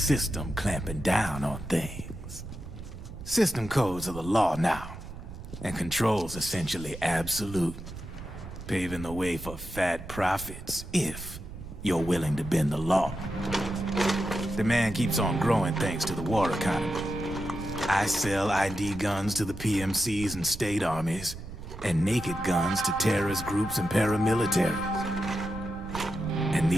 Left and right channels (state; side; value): noise; right; rumble, 12 dB below the sound